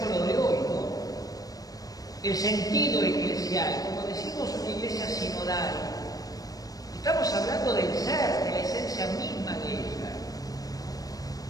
lo de hoy, ¿no? El sentido eclesial, como decimos, una iglesia sinodal. Estamos hablando del ser, de la esencia misma de ella.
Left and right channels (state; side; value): late; right; 0.18 ms